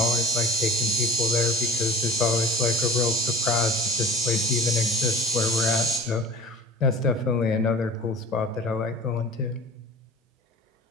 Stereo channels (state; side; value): normal; both; correlation 0.41